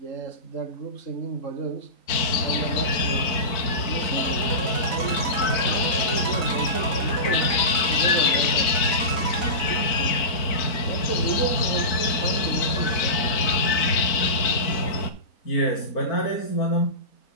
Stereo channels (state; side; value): late; right; 4.4 ms